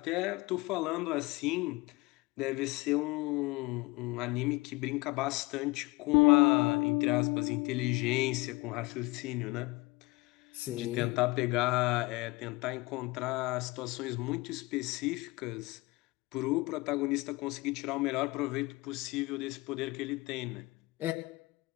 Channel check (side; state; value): right; quieter; 23.0 dB